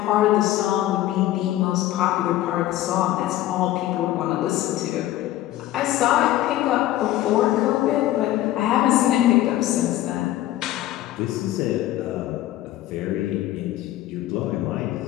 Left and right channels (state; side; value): quieter; right; 14.4 dB